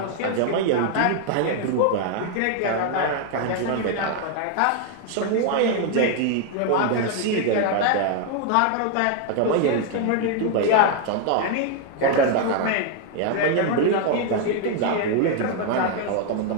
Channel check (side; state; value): both; different; correlation 0.00